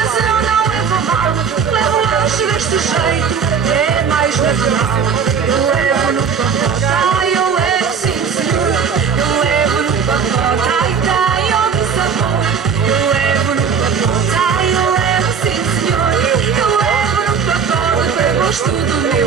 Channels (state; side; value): quieter; left; 6.5 dB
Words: eu não levo mal. Levo lanche deste jeito, é mais natural. Eu levo no pacote, ai eu levo sim senhor. Eu levo no pacote, ai tem outro sabor. Eu levo no pacote, ai eu levo sim senhor. Eu levo no pacote para gosto do meu